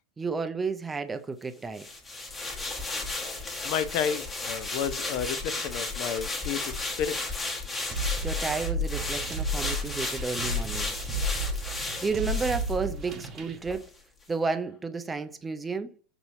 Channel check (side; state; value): both; normal; correlation 0.47